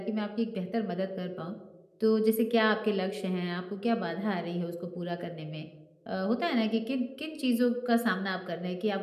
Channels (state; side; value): identical; both; correlation 1.00